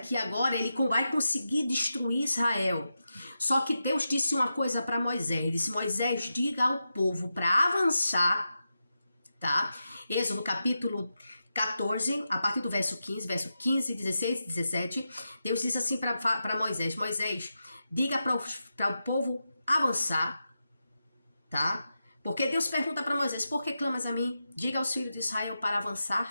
agora ele vai conseguir destruir Israel. Só que Deus disse uma coisa para Moisés. Ele disse: Moisés, diga ao povo para avançar, tá? Êxodo capítulo 14, a partir do verso 15, 16, 17, Deus disse assim para Moisés: Moisés, diga para o povo avançar, tá? Porque Deus pergunta para Moisés: por que clamas a mim? Diga aos filhos de Israel para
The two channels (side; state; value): both; inverted; correlation -0.89